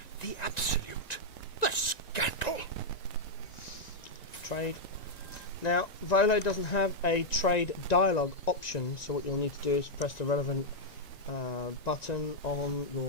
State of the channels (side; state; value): right; late; 1.9 ms